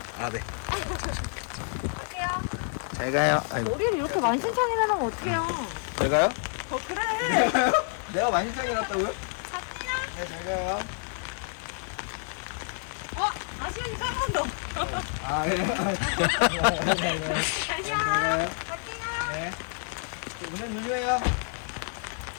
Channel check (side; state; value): right; silent; 59 dB below the other